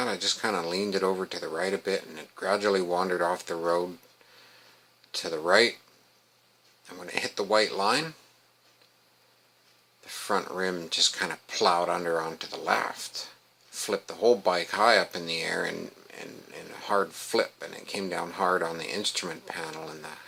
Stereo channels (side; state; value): both; identical; correlation 1.00